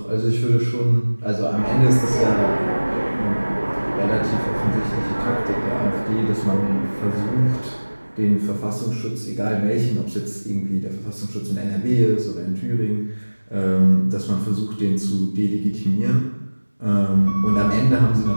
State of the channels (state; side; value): inverted; both; correlation -1.00